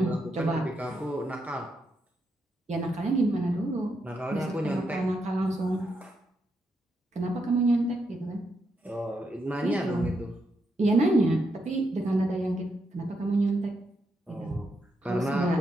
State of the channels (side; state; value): both; normal; correlation 0.81